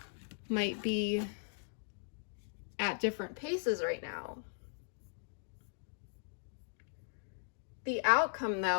might be at different paces right now. The outcome,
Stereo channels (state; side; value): silent; right; digital silence